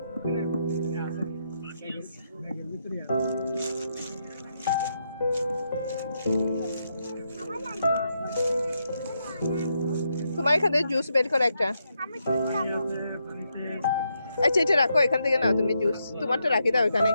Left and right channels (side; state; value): both; inverted; correlation -0.81